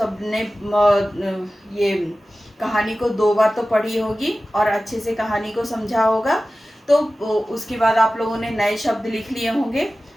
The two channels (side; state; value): both; normal; correlation 0.96